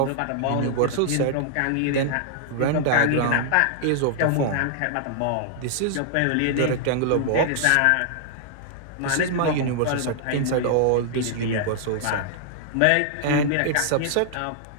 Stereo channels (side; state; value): both; different; correlation -0.01